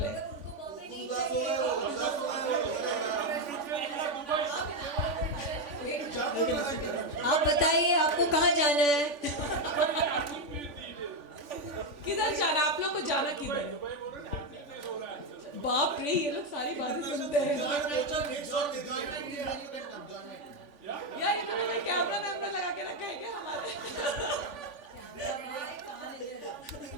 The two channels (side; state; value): left; late; 3.5 ms